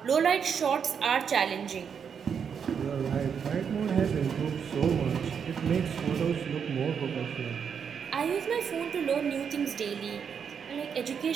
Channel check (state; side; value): quieter; left; 7.0 dB